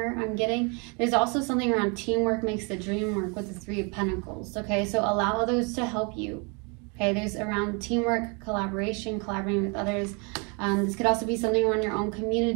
I'm getting. There's also something around teamwork makes the dream work with the Three of Pentacles, okay? So allow others to help you, okay? There's around teamwork, collaboration, collaborating with others. This could also be something around your own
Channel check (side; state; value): left; quieter; 32.9 dB